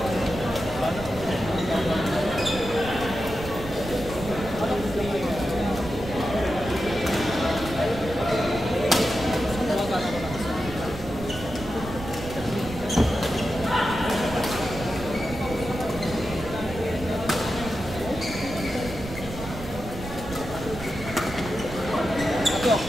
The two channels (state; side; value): noise; right; rumble, 11 dB below the sound